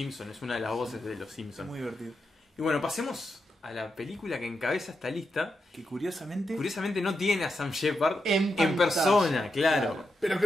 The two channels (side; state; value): both; normal; correlation 0.86